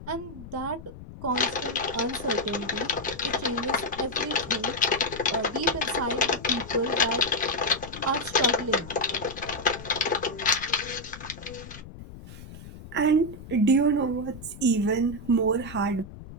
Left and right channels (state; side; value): noise; left; rumble, 14 dB below the sound